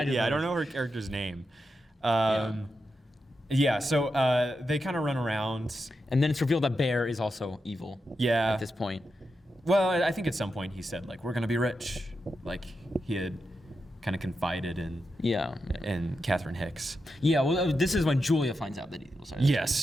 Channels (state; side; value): normal; both; correlation 0.87